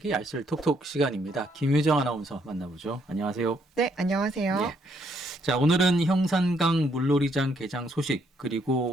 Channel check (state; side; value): normal; both; correlation 0.71